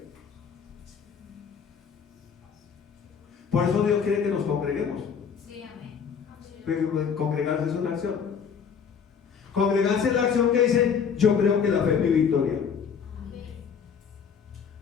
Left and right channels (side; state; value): right; quieter; 6.8 dB